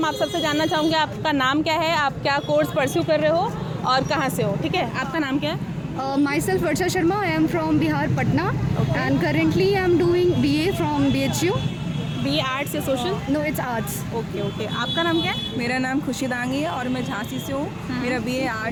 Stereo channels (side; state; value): both; identical; correlation 1.00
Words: आप सबसे जानना चाहूँगी। आपका नाम क्या है, आप क्या कोर्स परस्यू कर रहे हो और कहाँ से हो? ठीक है, आपका नाम क्या है? Myself Varsha Sharma. I am from Bihar, Patna, and currently I am doing BA from BHU. BA arts या social? No, it's arts. Okay. आपका नाम क्या है? मेरा नाम खुशी दांगी है और मैं झांसी से हूँ। मेरा BA